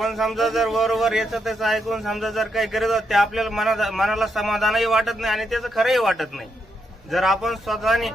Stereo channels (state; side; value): normal; both; correlation 0.80